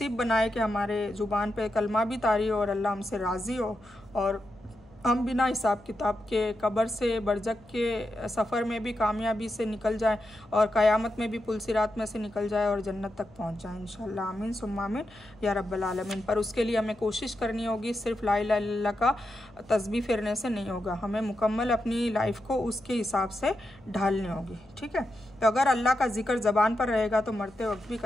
बनाए कि हमारे ज़ुबान पे कलमा भी तारी हो और अल्लाह हमसे राज़ी हो और हम बिना हिसाब किताब के कब्र से बरज़ख के सफ़र में भी कामयाबी से निकल जाएं और क़यामत में भी पुल सिरात में से निकल जाए और जन्नत तक पहुंच जाएं इंशाअल्लाह। आमीन सुम्मा आमीन या रब्बल आलमीन। पर उसके लिए हमें कोशिश करनी होगी, सिर्फ ला इलाहा इल्लल्लाह का तस्बीह फेरने से नहीं होगा, हमें मुकम्मल अपनी लाइफ को उसके हिसाब से ढालनी होगी। ठीक है। तो अगर अल्लाह का जिक्र ज़बान पर रहेगा तो मरते वक्त भी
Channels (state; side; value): noise; left; hum, 26 dB below the sound